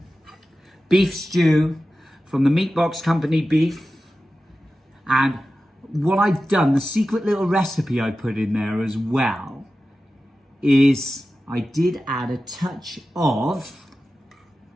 beef stew from the Meat Box Company beef. And what I've done, the secret little recipe I put in there as well, is I did add a touch of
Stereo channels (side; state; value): both; normal; correlation 0.94